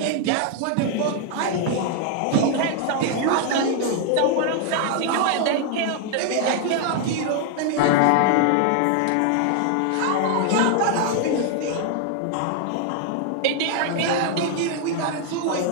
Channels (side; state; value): both; different; correlation 0.00